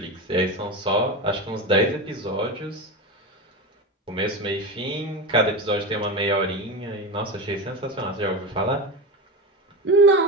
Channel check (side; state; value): both; normal; correlation 0.21